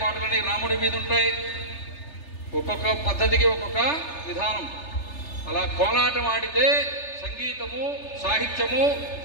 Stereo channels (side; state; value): right; late; 3.3 ms